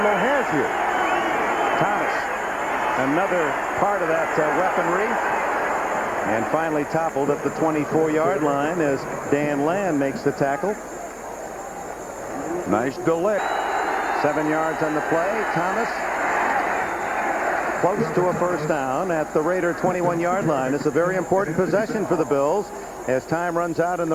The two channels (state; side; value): identical; both; correlation 1.00